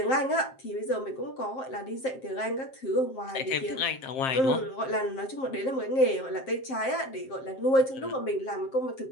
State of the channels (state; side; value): late; right; 7.6 ms